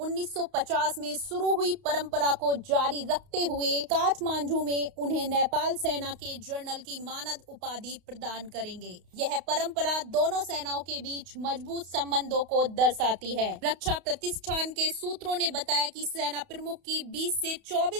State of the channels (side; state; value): left; late; 32 ms